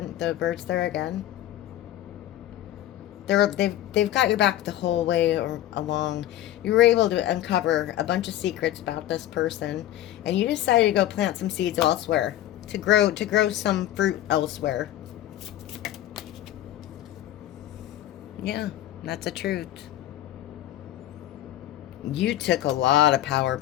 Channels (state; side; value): quieter; right; 13.3 dB